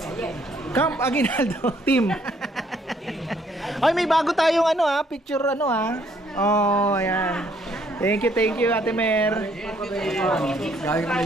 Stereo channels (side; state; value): both; normal; correlation 0.66